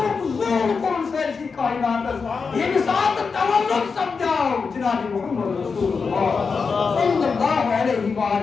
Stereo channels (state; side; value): quieter; right; 5.1 dB